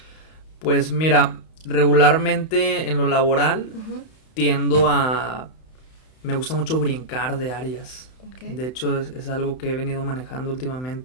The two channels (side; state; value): right; late; 31 ms